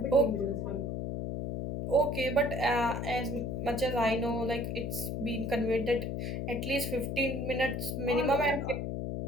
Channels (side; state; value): left; noise; hum, 3 dB below the sound